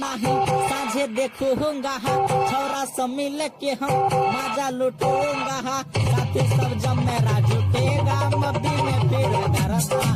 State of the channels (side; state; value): both; identical; correlation 1.00